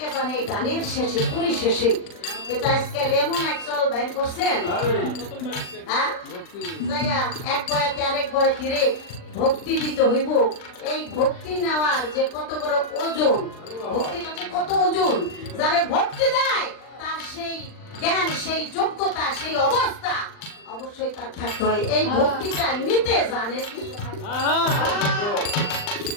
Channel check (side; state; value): right; late; 39 ms